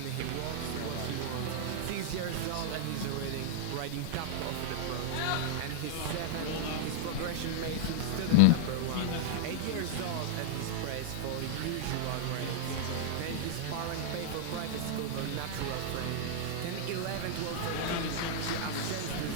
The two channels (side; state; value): both; different; correlation 0.00